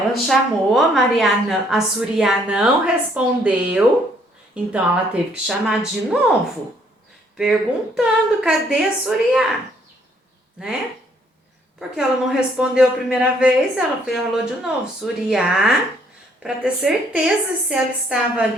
chamou, a Suriá não respondeu, então ela teve que chamar de novo, perguntando cadê a Suriá, né? Porque ela não respondeu a primeira vez, ela falou de novo, Suriá, para ter certeza se ela estava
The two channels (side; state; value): both; normal; correlation 0.66